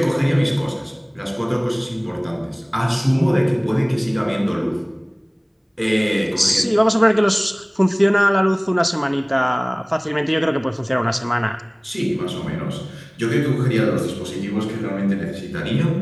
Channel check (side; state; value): both; identical; correlation 1.00